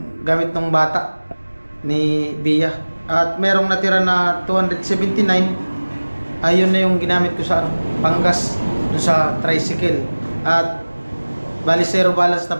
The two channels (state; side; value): inverted; both; correlation -1.00